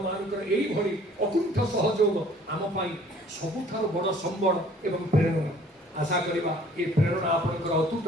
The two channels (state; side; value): normal; both; correlation 0.54